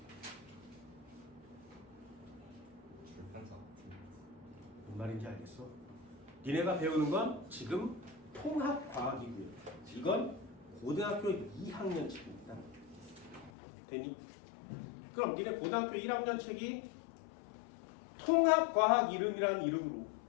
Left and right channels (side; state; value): right; drops out; at 13.5 s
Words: 뭔 말인지 알겠어? 니네가 배우는 건 지금 통합과학이고요. 이건 고등학교 2학년 책입니다. 되니? 그럼 니네 고등학교 1학년 책이 통합과학 이름이라는 이름으로